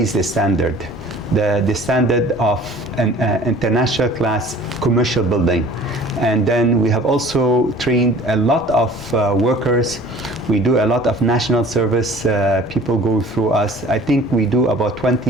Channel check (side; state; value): both; normal; correlation 0.47